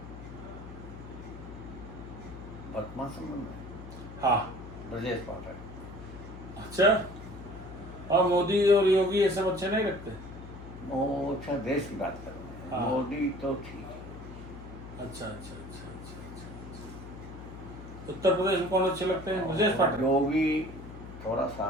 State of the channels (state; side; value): noise; left; hum, 13 dB below the sound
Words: वर्तमान समय में हाँ। ब्रजेश पाठक। अच्छा, और मोदी और योगी ये सब अच्छे नहीं लगते? वो अच्छा, देश की बात कर रहे हैं। हाँ। मोदी तो ठीक है। अच्छा अच्छा अच्छा अच्छा अच्छा अच्छा। उत्तर प्रदेश में कौन अच्छे लगते हैं? ब्रजेश पाठक? योगी थोड़ा